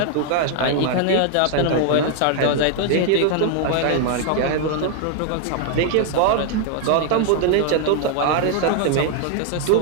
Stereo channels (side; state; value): both; different; correlation 0.00